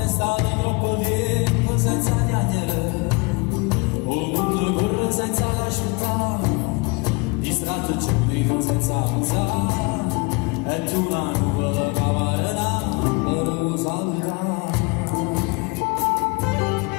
è stato troppo tempo senza chiacchiere. O mondo corre senza lasciare, distratto giudico senza pensare. E tu una nuvola che varrà, per lo salutare.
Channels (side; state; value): right; quieter; 28.5 dB